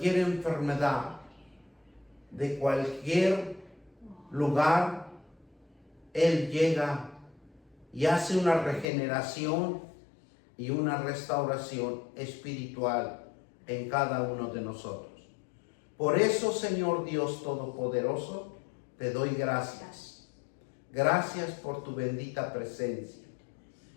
enfermedad, de cualquier lugar. Él llega y hace una regeneración y una restauración espiritual en cada uno de nosotros. Por eso, Señor Dios Todopoderoso, te doy gracias. Gracias por tu bendita presencia.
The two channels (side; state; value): right; drops out; at 8.8 s